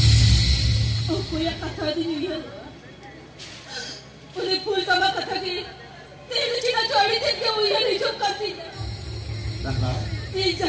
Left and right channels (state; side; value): identical; both; correlation 1.00